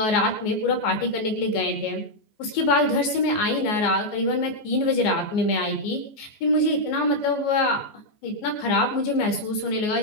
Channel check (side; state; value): right; late; 14 ms